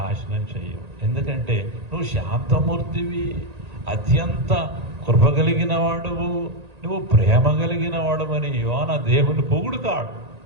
చెయ్యవు. ఎందుకంటే నువ్వు శాంతమూర్తివి, అత్యంత కృప కలిగిన వాడువు, నువ్వు ప్రేమ కలిగిన వాడవని యోన దేవుని పొగుడుతాడు.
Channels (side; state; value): left; late; 1.9 ms